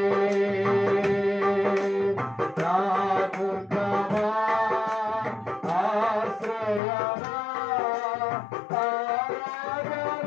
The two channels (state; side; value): drops out; right; at 6.8 s